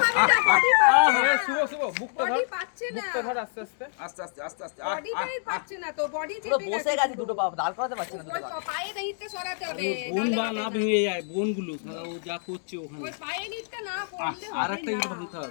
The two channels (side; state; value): right; silent; digital silence